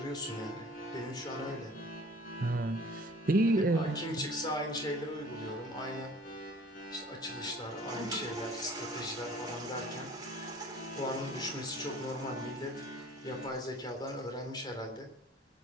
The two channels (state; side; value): normal; both; correlation 0.49